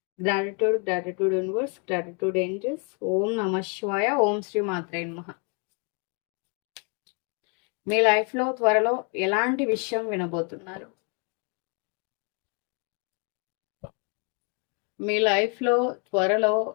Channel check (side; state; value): right; quieter; 36.5 dB